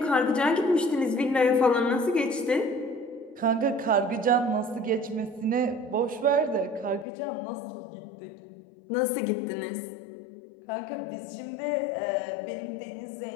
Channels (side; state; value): right; drops out; at 7.1 s